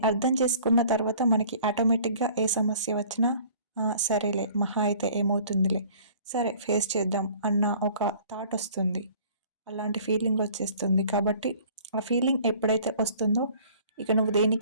అర్థం చేసుకున్న తర్వాత మనకి ఆటోమేటిక్గా ఏ సమస్య వచ్చినా సరేలే, మహా అయితే ఏమవుతుందిలే, సరే ఫేస్ చేద్దాం అన్న ఒక థాట్ వస్తుంది. అలాంటి ఫీలింగ్ వచ్చేస్తుంది. కాబట్టి ఆ ఫీలింగ్ ఎప్పుడైతే వస్తుందో ఇక నువ్వు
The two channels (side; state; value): both; inverted; correlation -0.51